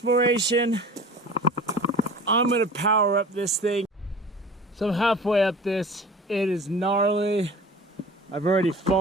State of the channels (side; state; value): both; normal; correlation 0.41